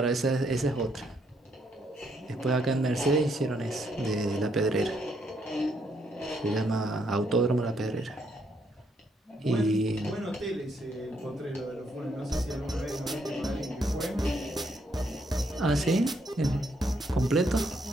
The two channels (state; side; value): normal; both; correlation 0.74